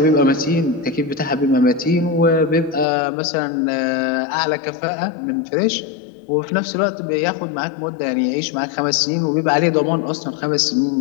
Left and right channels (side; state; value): right; drops out; at 2.9 s